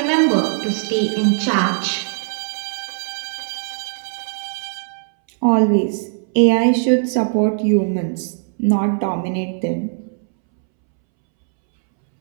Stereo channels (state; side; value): silent; left; 66 dB below the other